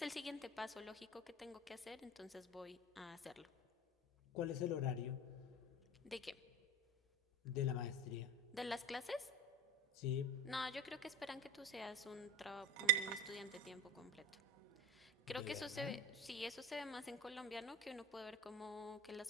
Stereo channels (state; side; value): normal; both; correlation 0.33